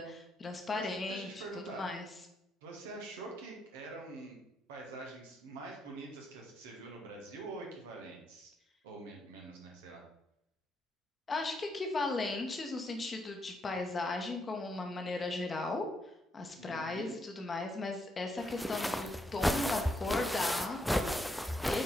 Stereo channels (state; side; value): normal; both; correlation 0.79